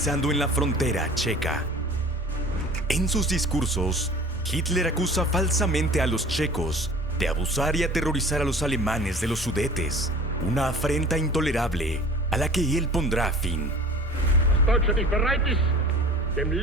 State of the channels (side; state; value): both; normal; correlation 0.43